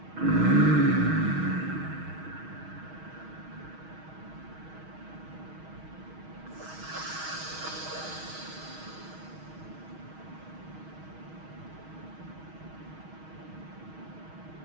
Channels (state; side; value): late; left; 6.3 ms